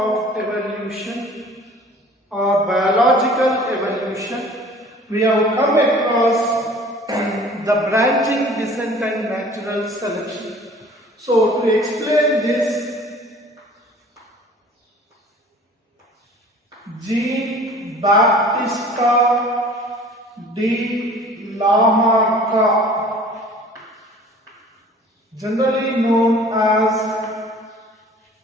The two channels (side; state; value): both; normal; correlation 0.48